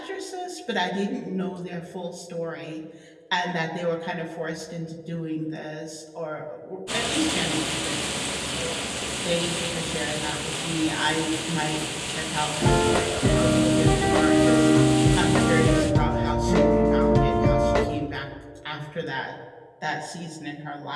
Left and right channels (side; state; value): both; identical; correlation 1.00